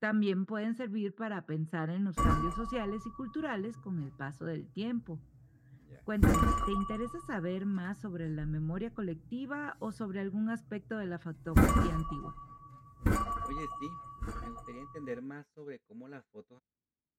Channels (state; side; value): identical; both; correlation 1.00